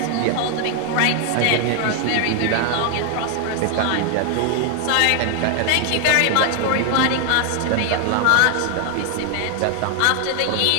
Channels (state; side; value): different; both; correlation 0.00